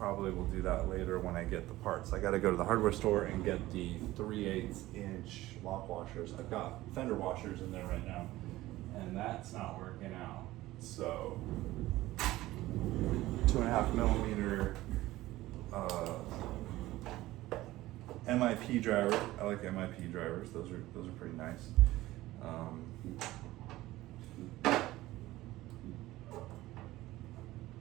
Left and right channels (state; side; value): quieter; left; 17.0 dB